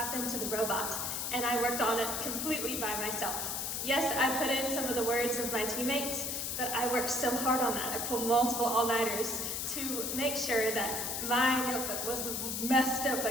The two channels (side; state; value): left; noise; hiss, 2 dB below the sound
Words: to the robot, and I worked on it completely by myself. Yes, I put in some of the words of my teammates, but I worked so hard on that. I pulled multiple all-nighters to make sure that my notebook was the best